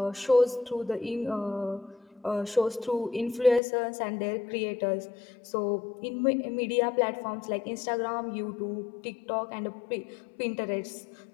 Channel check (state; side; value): drops out; right; at 3.6 s